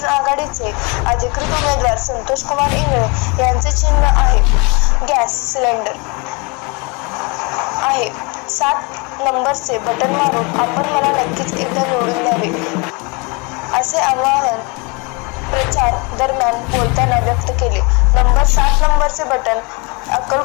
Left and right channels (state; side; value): quieter; right; 29.9 dB